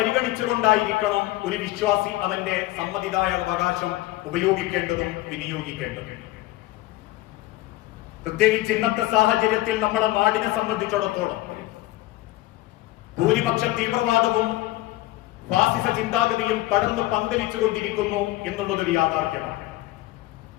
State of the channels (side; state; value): right; quieter; 17.7 dB